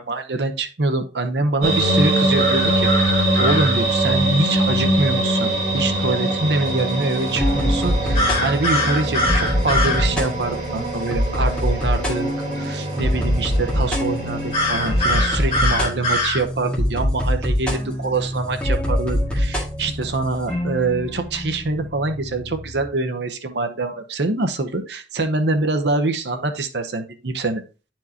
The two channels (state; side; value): normal; both; correlation 0.46